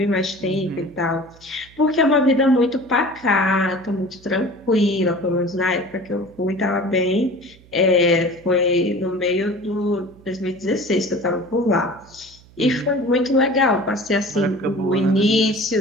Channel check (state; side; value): noise; right; hum, 25 dB below the sound